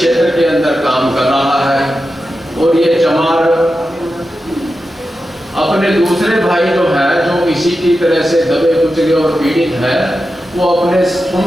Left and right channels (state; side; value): normal; both; correlation 0.91